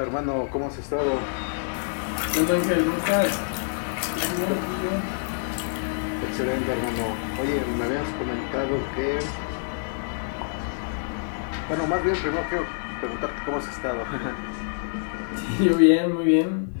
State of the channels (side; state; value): right; silent; digital silence